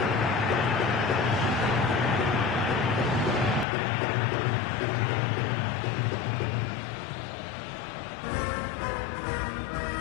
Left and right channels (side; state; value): right; drops out; at 3.7 s